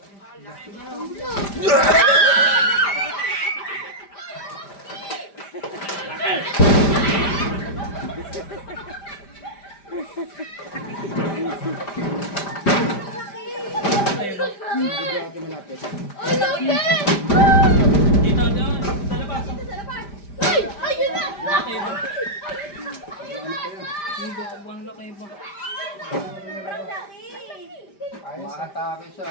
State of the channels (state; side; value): late; right; 5.0 ms